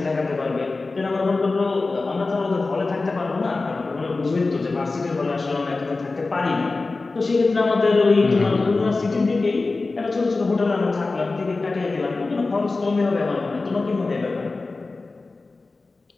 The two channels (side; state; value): right; quieter; 3.6 dB